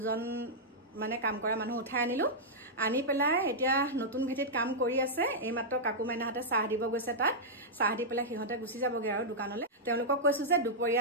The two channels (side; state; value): both; normal; correlation -0.08